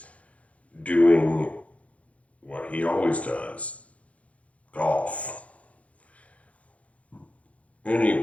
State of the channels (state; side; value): late; right; 0.065 ms